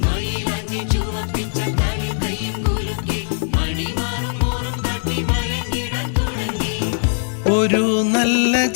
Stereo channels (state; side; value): silent; right; digital silence